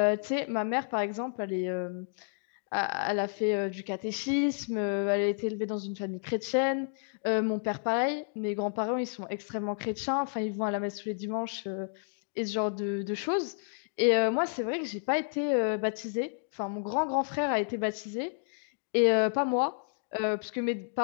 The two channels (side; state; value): right; silent; digital silence